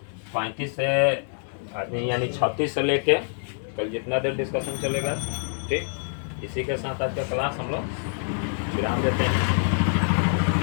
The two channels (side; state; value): right; silent; 61 dB below the other